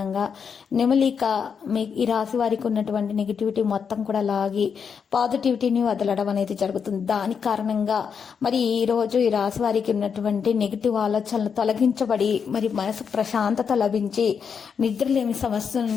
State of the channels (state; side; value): quieter; right; 6.6 dB